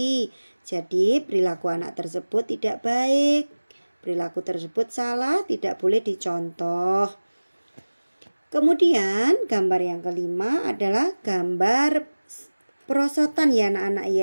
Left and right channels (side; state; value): both; inverted; correlation -1.00